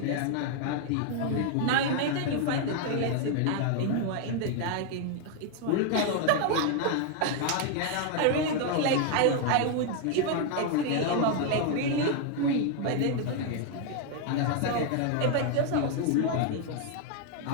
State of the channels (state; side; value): different; both; correlation 0.00